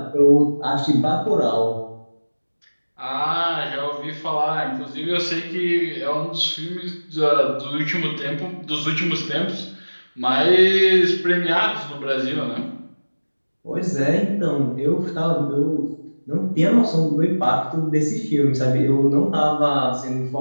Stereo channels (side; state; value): both; inverted; correlation -1.00